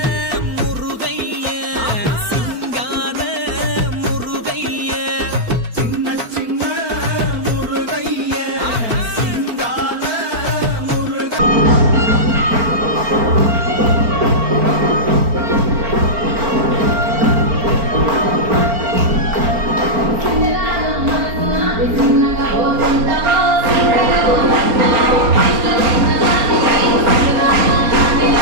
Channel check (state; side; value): late; left; 4.4 ms